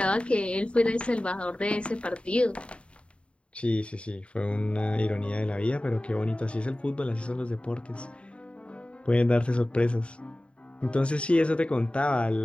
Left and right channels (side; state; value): right; late; 0.059 ms